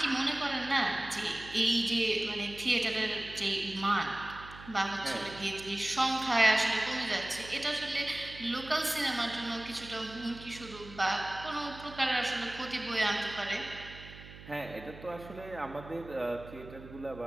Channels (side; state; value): right; noise; hum, 16 dB below the sound